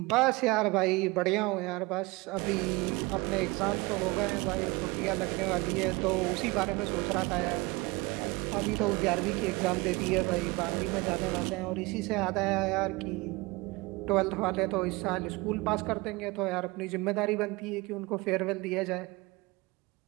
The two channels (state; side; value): quieter; left; 23.8 dB